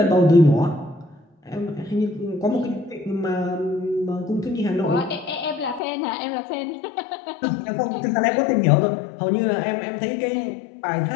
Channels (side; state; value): right; drops out; at 5.8 s